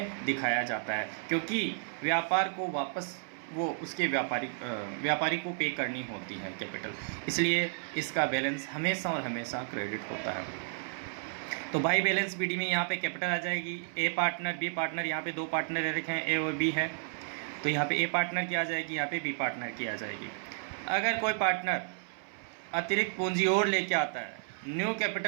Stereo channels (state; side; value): silent; left; 56 dB below the other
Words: दिखाया जाता है, क्योंकि व्यापार को वापस वो उसके व्यापारी को पे करनी होती है कैपिटल, इसलिए इसका बैलेंस हमेशा और हमेशा क्रेडिट होता है। तो बाई बैलेंस बीडी में यहाँ पे कैपिटल आ जाएगी, ए पार्टनर बी पार्टनर, यहाँ पे दो पार्टनर दे रखे हैं ए और बी है, तो यहाँ पे ए पार्टनर की आ जाएगी, यहाँ पे बी पार्टनर की आ जाएगी। अगर कोई पार्टनर अतिरिक्त पूंजी और लेके आता है, न्यू